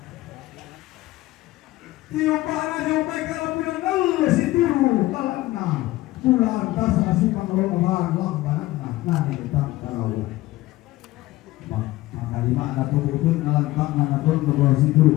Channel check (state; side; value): quieter; right; 17.8 dB